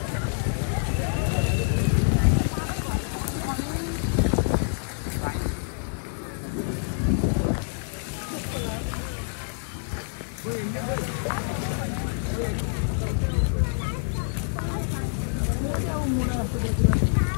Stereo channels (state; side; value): silent; right; digital silence